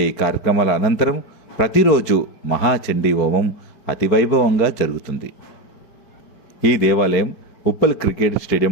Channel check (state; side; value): late; right; 4.5 ms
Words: ఈ కార్యక్రమాల అనంతరం ప్రతిరోజు మహాచండీ హోమం అతివైభవంగా జరుగుతుంది. ఈ దేవాలయం ఉప్పల్ క్రికెట్